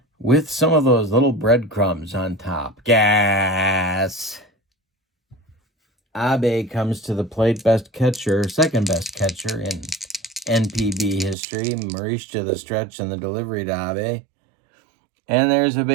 with some of those little breadcrumbs on top. Gas. Abe comes to the plate, second best catcher in NPB history. Morishita the stretch and the delivery to Abe. And there's a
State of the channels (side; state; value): left; drops out; at 11.4 s